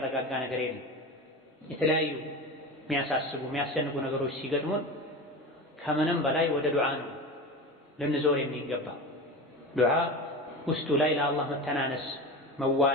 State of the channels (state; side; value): normal; both; correlation 0.28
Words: ነገር የለም። የተለያዩ የሚያሳስቡ የሚያስጨንቁ ነገሮች ሲገጥሙን ከምንም በላይ ወደ ዱዓ ነው ልንዞር የሚገባ። ዱዓ ውስጡ ላይ ለአላህ መተናነስ፣